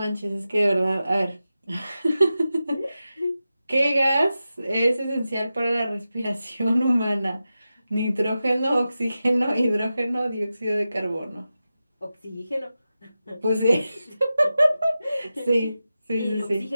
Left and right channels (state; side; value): inverted; both; correlation -0.92